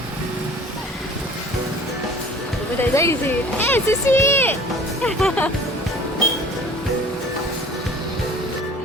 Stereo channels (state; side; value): normal; both; correlation 0.47